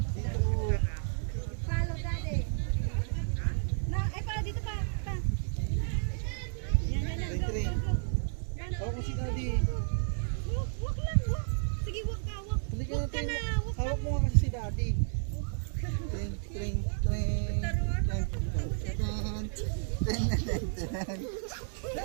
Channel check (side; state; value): left; silent; 57 dB below the other